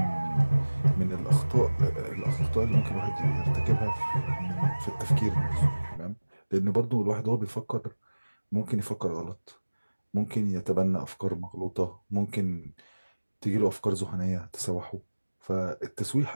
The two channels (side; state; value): both; inverted; correlation -1.00